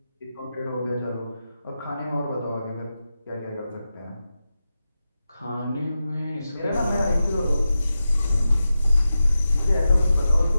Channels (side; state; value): both; inverted; correlation -0.91